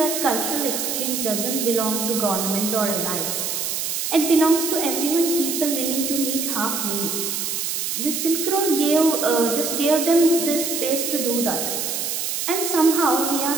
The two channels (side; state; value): right; noise; hiss, 2 dB below the sound